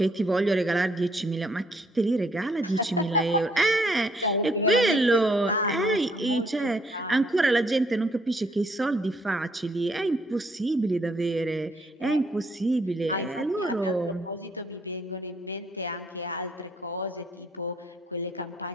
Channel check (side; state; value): both; normal; correlation 0.67